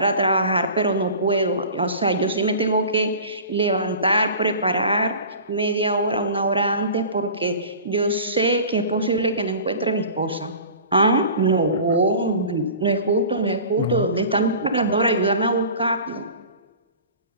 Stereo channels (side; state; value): both; inverted; correlation -0.39